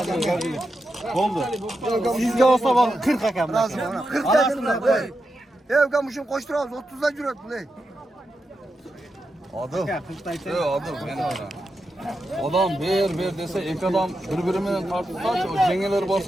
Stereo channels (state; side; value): normal; both; correlation 0.87